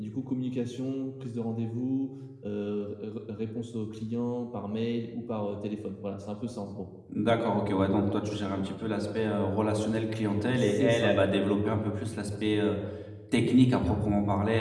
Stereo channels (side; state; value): both; identical; correlation 1.00